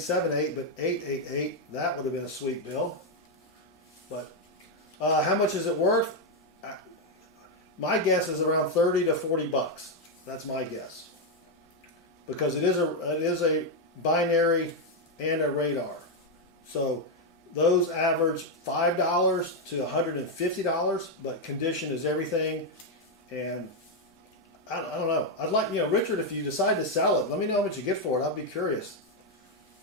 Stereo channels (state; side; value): normal; both; correlation 0.02